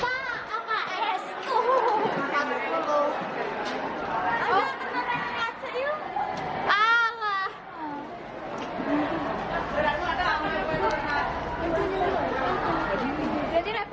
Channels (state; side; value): identical; both; correlation 1.00